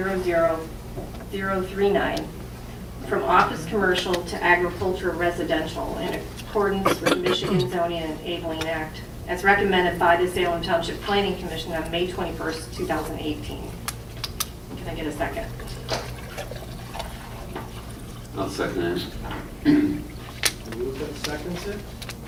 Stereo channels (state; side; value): identical; both; correlation 1.00